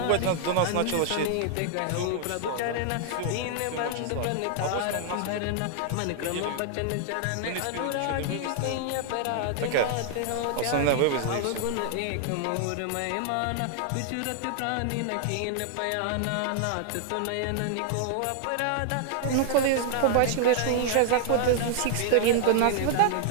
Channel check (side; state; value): both; different; correlation 0.00